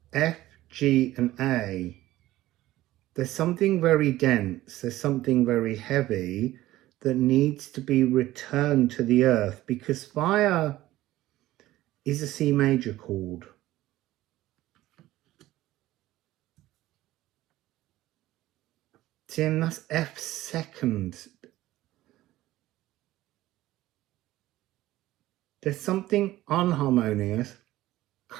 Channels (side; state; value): left; quieter; 15.9 dB